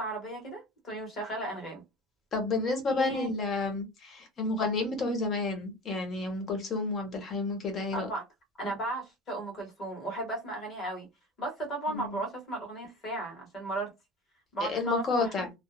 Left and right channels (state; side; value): normal; both; correlation 0.36